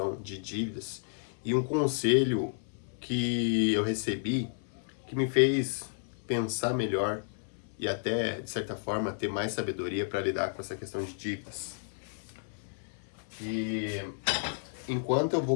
de dívidas e um conselho que eu recebi que me fez pensar melhor e até, de certa forma, ter mais sabedoria para lidar com essa questão de dívidas. E enquanto eu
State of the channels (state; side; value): silent; right; 57 dB below the other